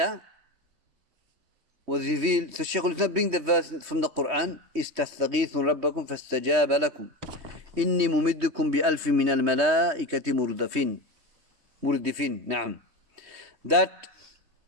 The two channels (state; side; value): late; left; 3.2 ms